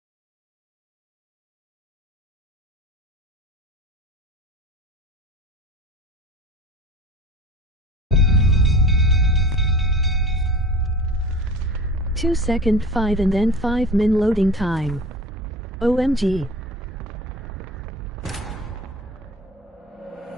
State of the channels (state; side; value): normal; both; correlation 0.37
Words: Second 5 and then 5 min loading time. OMG.